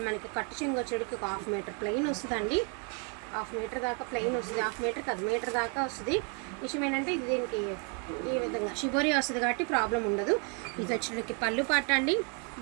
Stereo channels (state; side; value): quieter; left; 34.8 dB